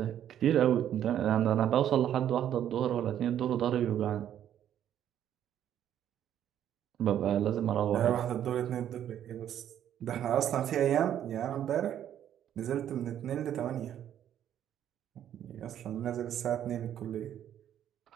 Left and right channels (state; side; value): quieter; left; 10.5 dB